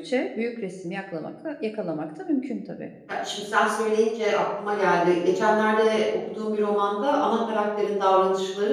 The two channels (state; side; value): identical; both; correlation 1.00